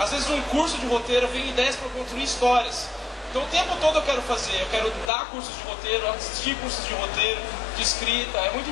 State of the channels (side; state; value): right; drops out; at 5.1 s